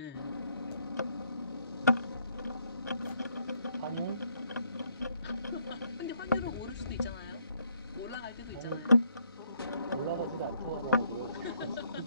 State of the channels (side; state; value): both; inverted; correlation -0.71